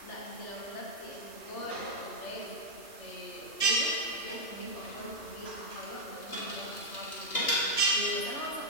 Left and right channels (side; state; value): right; late; 2.5 ms